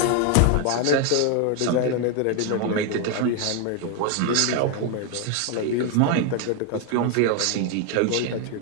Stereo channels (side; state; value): both; different; correlation 0.01